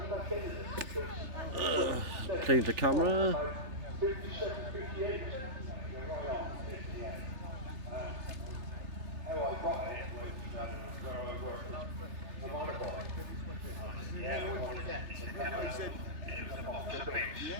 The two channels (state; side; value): late; left; 3.3 ms